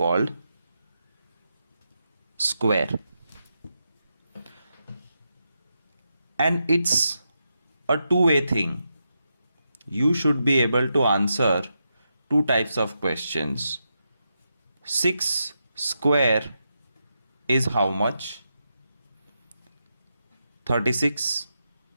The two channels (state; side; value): inverted; both; correlation -0.86